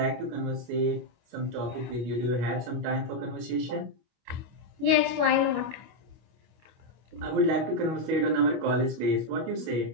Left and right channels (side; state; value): left; late; 25 ms